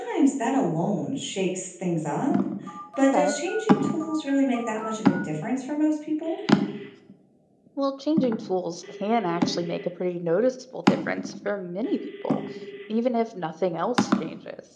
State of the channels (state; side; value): identical; both; correlation 1.00